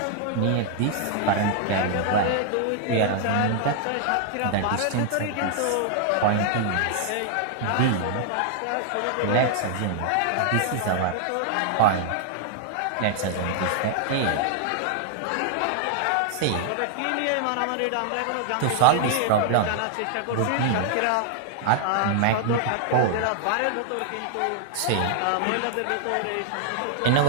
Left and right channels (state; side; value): different; both; correlation 0.00